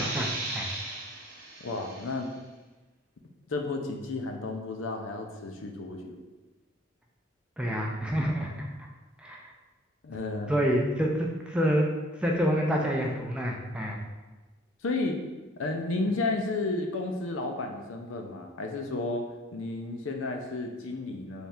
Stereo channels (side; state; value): both; normal; correlation 0.54